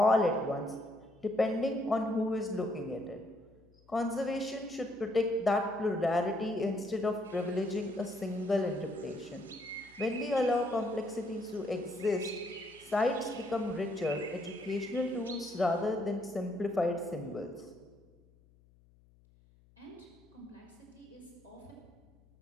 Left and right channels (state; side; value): noise; left; hum, 29 dB below the sound